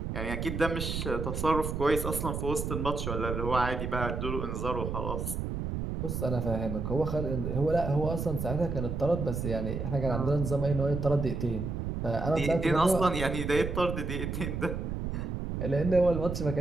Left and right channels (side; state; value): right; noise; rumble, 3 dB below the sound